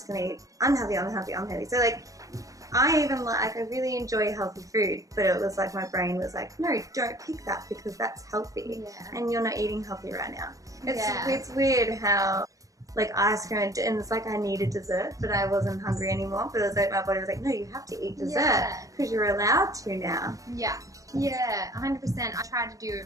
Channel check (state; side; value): late; left; 0.16 ms